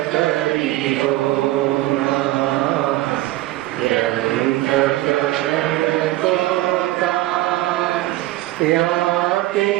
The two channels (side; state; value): left; quieter; 16.7 dB